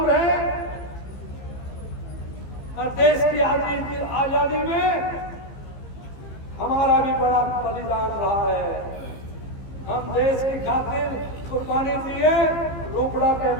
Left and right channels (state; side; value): late; right; 15 ms